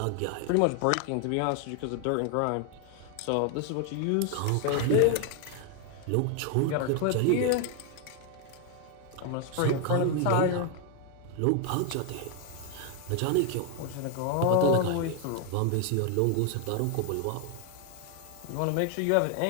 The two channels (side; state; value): both; different; correlation 0.01